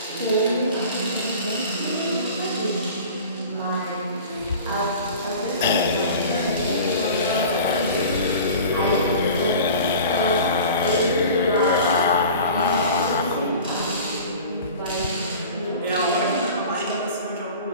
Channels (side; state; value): both; inverted; correlation -0.40